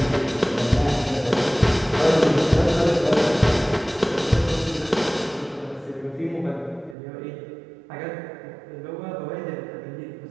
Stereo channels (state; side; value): drops out; left; at 7.0 s